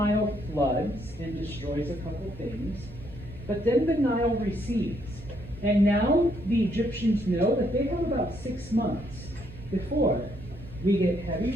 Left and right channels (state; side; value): noise; right; hum, 16 dB below the sound